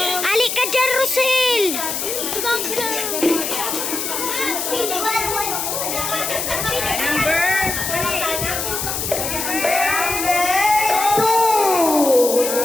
Alik ka dyan, Rosel!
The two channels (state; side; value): noise; left; hiss, 3 dB below the sound